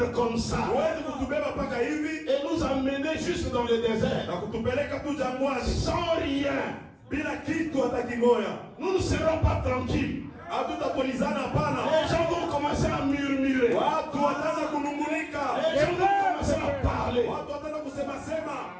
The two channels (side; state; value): both; identical; correlation 1.00